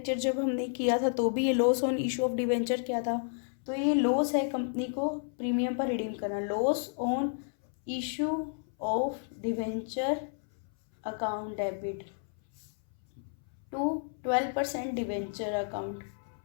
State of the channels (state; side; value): silent; right; 57 dB below the other